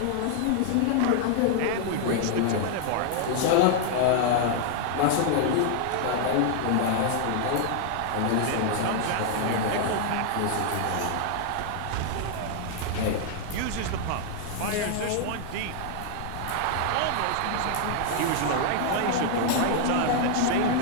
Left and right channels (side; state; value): both; different; correlation 0.00